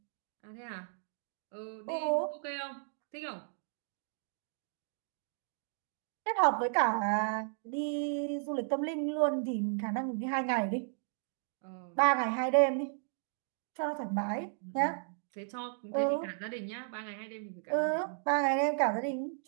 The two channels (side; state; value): left; silent; digital silence